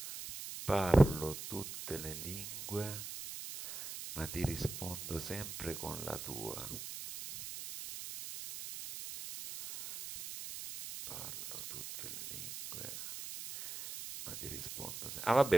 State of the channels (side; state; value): right; noise; hiss, 8 dB below the sound